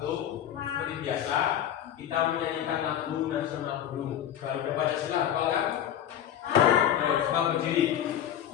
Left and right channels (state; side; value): quieter; right; 10.4 dB